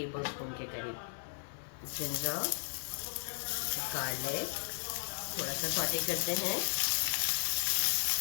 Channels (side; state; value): right; silent; digital silence